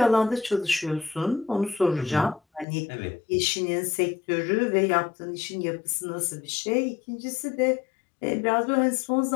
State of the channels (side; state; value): right; drops out; at 2.7 s